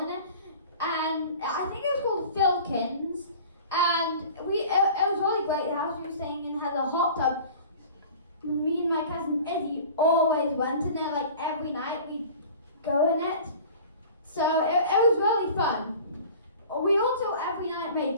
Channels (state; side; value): inverted; both; correlation -0.42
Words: and I think it was called Filkins. And it was really great. The house we were staying in had a hot tub. Me and my cousin Izzy always went in there. Every night we'd go in it. So it was really fun. We also every night made